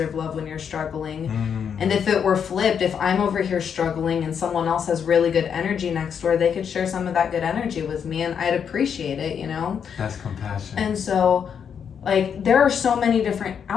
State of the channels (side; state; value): right; quieter; 7.5 dB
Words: love when you're struggling. And if it were flipped, if I'm over here struggling and someone else has really good energy next door, they could share some of that good energy with me and I'd appreciate it, you know? That's compassion. And so like there are so many different